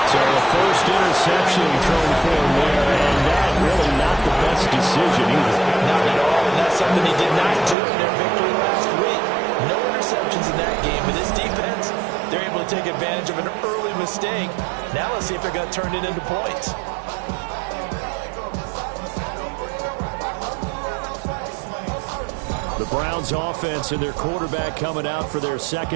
So the first interception thrown for him there, and that really not the best decision either. Not at all, and that's something he did not do in their victory last week. No interceptions in that game, but this defense, they're able to take advantage of an early mistake. Now let's see if they're going to turn it into points. The Browns offense and their quarterback coming out for their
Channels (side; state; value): left; drops out; at 7.8 s